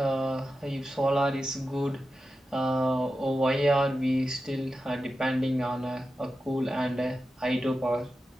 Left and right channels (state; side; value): normal; both; correlation 0.91